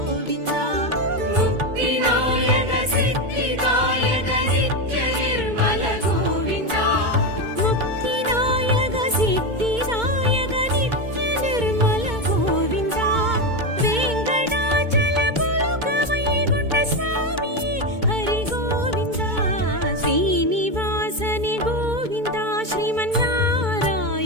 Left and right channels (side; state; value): left; late; 2.2 ms